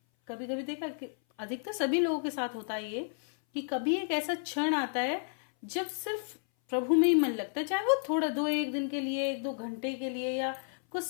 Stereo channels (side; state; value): right; silent; 57 dB below the other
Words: कभी कभी देखा कि अधिकतर सभी लोगों के साथ होता है ये, कि कभी एक ऐसा क्षण आता है जब सिर्फ प्रभु में ही मन लगता है, चाहे वो थोड़ा 1 दिन के लिए, 1-2 घंटे के लिए, या कुछ